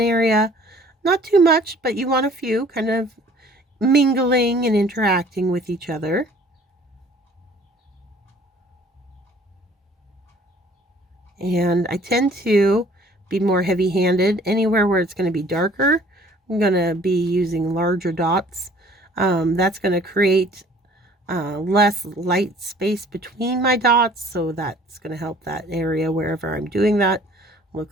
area. Not too much, but you want a few kind of mingling and interacting with each other. And I tend to be more heavy-handed. Anywhere where it's going to be darker, I'm going to be using larger dots. That's going to create less light space between my dots, so that's going to help that area wherever I'm doing that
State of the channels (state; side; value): normal; both; correlation 0.54